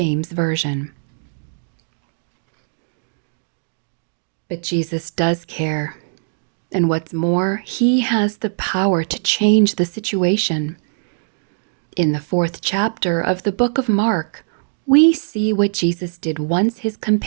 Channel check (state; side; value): silent; left; digital silence